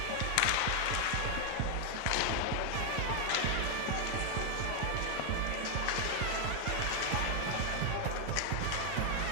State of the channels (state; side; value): different; both; correlation 0.00